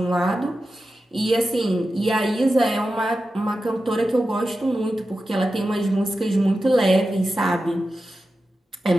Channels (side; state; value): both; normal; correlation 0.92